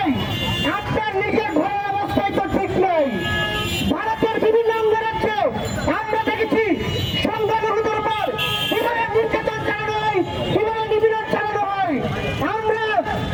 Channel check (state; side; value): identical; both; correlation 1.00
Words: আপনার নিজের ঘরের অবস্থায় তো ঠিক নেই। ভারতের বিভিন্ন অঙ্গরাজ্যে আমরা দেখেছি সংখ্যালঘুদের উপর কিভাবে নির্যাতন চালানো হয়, কিভাবে নিপীড়ন চালানো হয়। আমরা